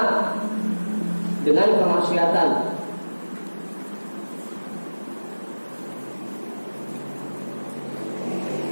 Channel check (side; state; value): both; inverted; correlation -1.00